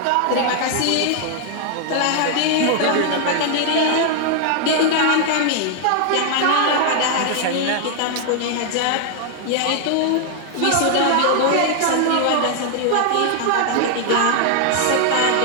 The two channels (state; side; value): different; both; correlation 0.00